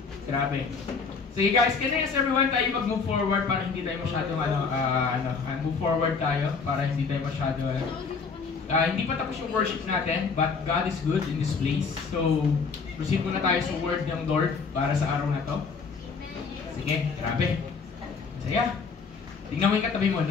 grabe. Sige guys, can I ask everyone tayo mag-move forward para hindi tayo masyadong move forward tayo para hindi tayo masyado hindi pa tapos yung worship natin, but God is good in this place. So, proceed muna tayo sa word ng Lord para sa araw na to. Sige, grabe. Masaya. Tingnan mo yung katabi mo,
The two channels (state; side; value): quieter; right; 5.1 dB